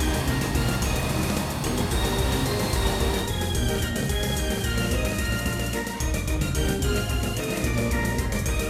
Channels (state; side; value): identical; both; correlation 1.00